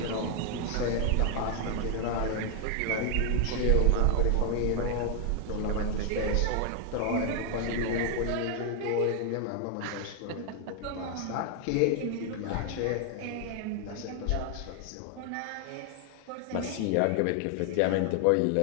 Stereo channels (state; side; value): different; both; correlation 0.00